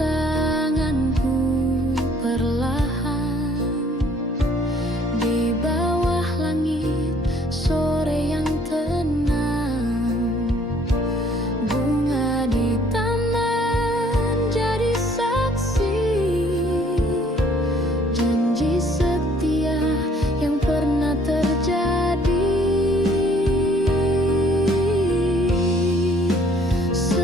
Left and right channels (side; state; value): both; normal; correlation 0.60